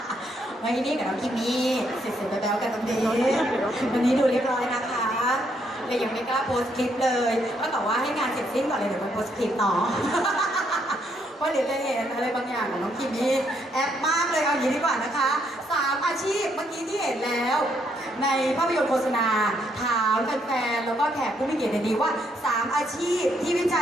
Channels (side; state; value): both; normal; correlation 0.73